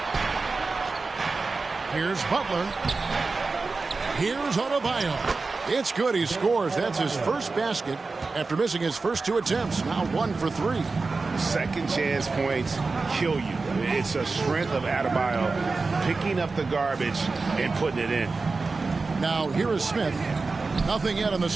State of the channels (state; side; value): quieter; left; 4.0 dB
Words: Here's Butler. Here's Adebayo. It's good. He scores. That's his first basket after missing his first 2 attempts. Now 1 for 3. Second chance points kill you. It's a strength of Adebayo picking up the garbage and putting it in. Now here is Smith. Nothing yet on the